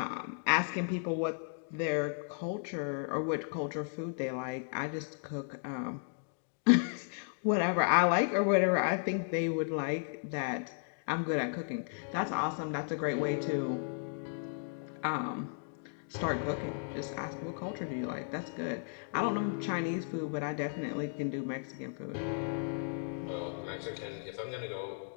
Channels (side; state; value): right; silent; digital silence